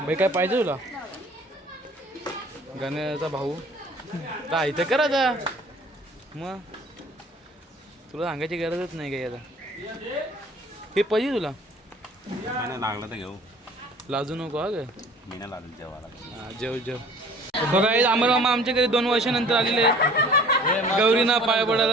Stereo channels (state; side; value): normal; both; correlation 0.49